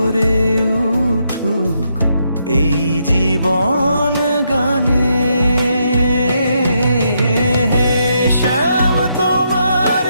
উঠুক এই জীবন গানে। হে শ্যাম, তোমার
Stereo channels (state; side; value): inverted; both; correlation -0.78